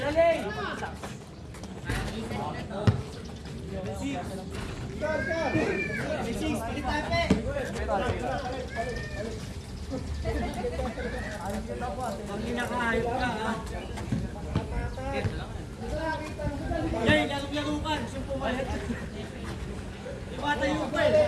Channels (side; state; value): both; identical; correlation 1.00